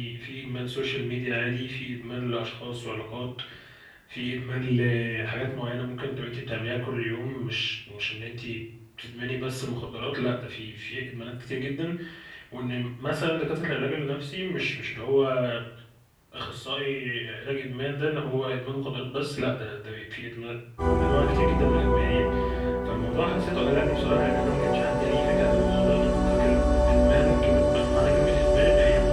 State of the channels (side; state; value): both; identical; correlation 1.00